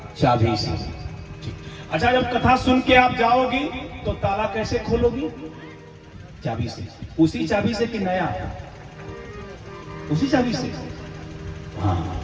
चाबी से। अच्छा, जब कथा सुन के आप जाओगी तो ताला कैसे खोलोगी? चाबी से। उसी चाबी से कि नया? उसी चाबी से। हाँ,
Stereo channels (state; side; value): identical; both; correlation 1.00